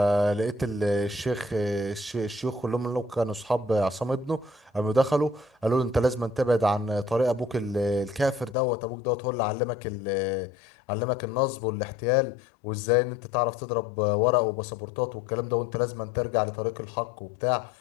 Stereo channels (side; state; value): right; drops out; at 8.6 s